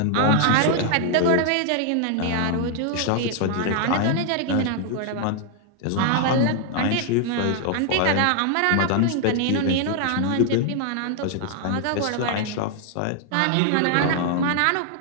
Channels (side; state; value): both; different; correlation 0.00